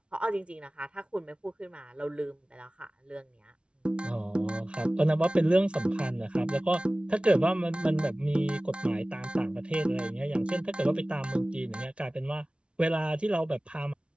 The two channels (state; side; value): late; left; 0.058 ms